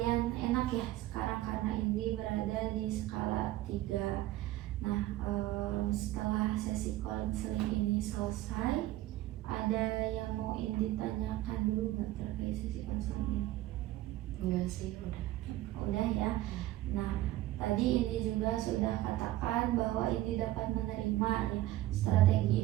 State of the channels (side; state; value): left; quieter; 15.6 dB